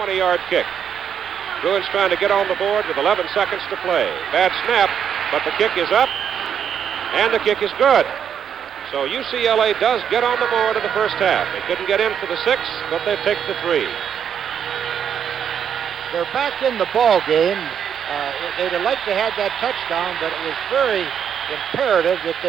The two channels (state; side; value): quieter; left; 8.2 dB